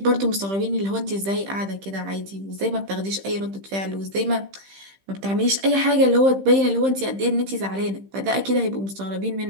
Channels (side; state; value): left; late; 15 ms